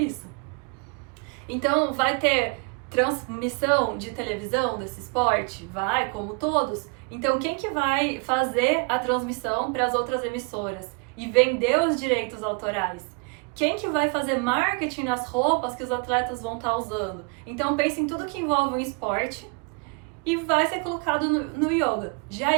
Então vai ter transmissão de televisão desse esporte? Vai, como todos. Então quem que vai fazer a transmissão para as outras emissoras e vender os direitos autorais? Quem que vai fazer marketing nas roupas que os atletas vão estar usando? Então pense em tudo que envolve o esporte e vai ser colocado no yoga. Já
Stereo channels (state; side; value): quieter; left; 33.9 dB